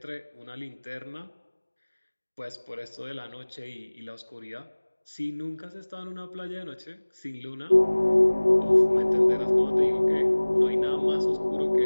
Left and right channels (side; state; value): both; inverted; correlation -1.00